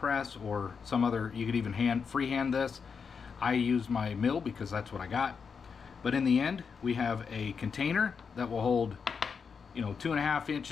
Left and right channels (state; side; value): quieter; right; 5.9 dB